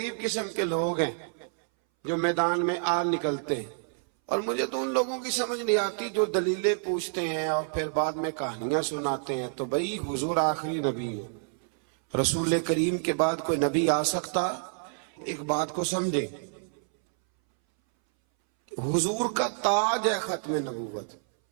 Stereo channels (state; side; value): silent; left; 59 dB below the other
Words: قسم کے لوگ ہیں جو میدان میں آ نکلتے ہیں۔ اور مجھے تو ان لوگوں کی سمجھ نہیں آتی جو دلیلیں پوچھتے ہیں اور پھر بعد میں کہانیاں سناتے ہیں۔ تو بھئی حضور آخری نبی ہے، رسول کریم کے بعد کوئی نبی آ سکتا؟ ایک بات کو سمجھیں، حضور کا تاج ہے ختم نبوت،